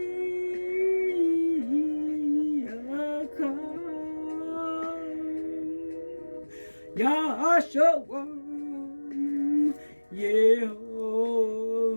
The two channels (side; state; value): both; inverted; correlation -1.00